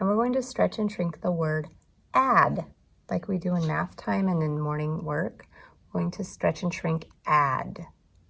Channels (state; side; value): identical; both; correlation 1.00